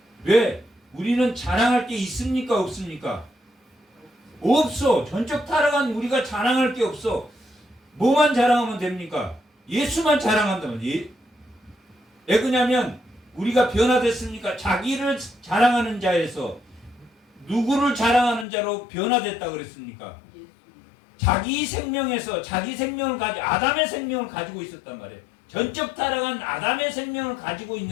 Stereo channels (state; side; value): drops out; right; at 18.4 s